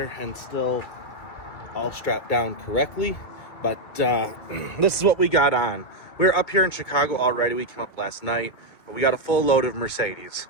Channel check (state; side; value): late; right; 2.3 ms